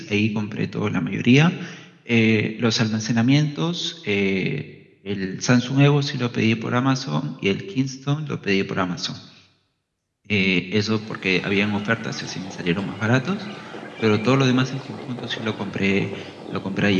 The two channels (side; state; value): both; identical; correlation 1.00